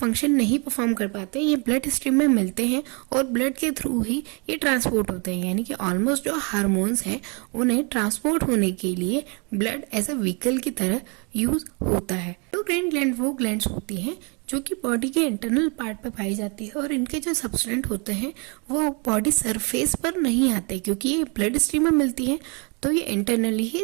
नहीं परफॉर्म कर पाते, ये ब्लड स्ट्रीम में मिलते हैं और ब्लड के थ्रू ही ये ट्रांसपोर्ट होते हैं, यानी कि ऑलमोस्ट जो हार्मोन्स हैं उन्हें ट्रांसपोर्ट होने के लिए ब्लड एज अ व्हीकल की तरह यूज होता है। एंडोक्राइन ग्लैंड वो ग्लैंड्स होती हैं जो कि बॉडी के इंटरनल पार्ट पर पाई जाती है, और इनके जो सब्सटेंट होते हैं वो बॉडी सरफेस पर नहीं आते, क्योंकि ये ब्लड स्ट्रीम में मिलती है तो ये इंटरनली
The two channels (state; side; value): quieter; left; 33.0 dB